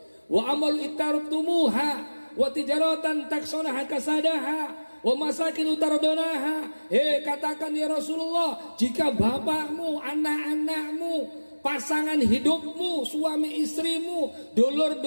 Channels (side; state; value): both; inverted; correlation -1.00